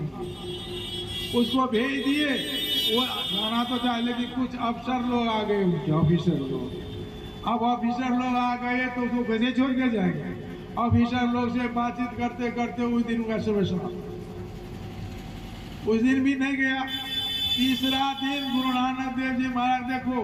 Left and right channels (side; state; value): both; identical; correlation 1.00